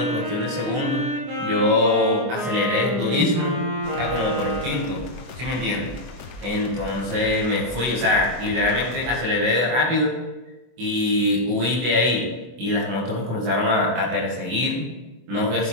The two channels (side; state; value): left; late; 24 ms